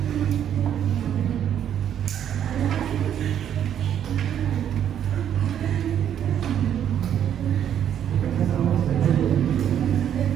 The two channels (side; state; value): left; quieter; 9.7 dB